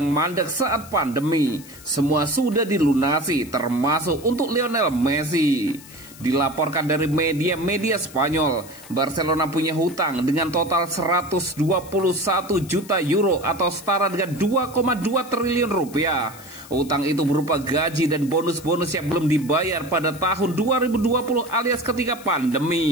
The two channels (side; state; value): left; noise; hiss, 19 dB below the sound